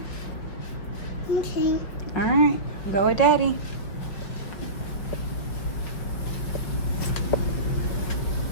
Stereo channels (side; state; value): right; late; 5.1 ms